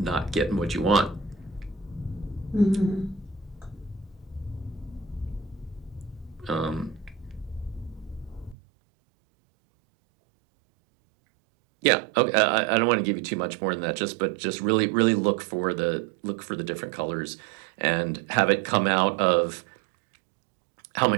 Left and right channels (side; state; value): left; drops out; at 8.6 s